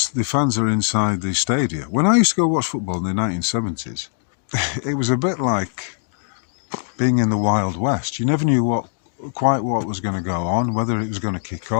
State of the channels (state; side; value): silent; right; digital silence